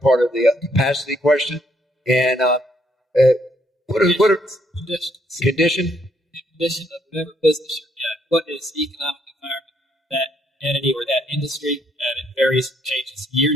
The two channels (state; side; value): normal; both; correlation 0.71